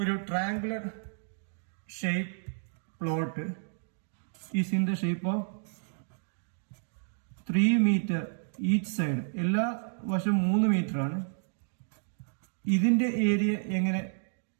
triangular shape plot is in the shape of 3 metre each side. എല്ലാ വശം 3 മീറ്റർ ആണ്. ഇതിന്റെ ഏരിയ എങ്ങനെ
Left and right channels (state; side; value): silent; left; digital silence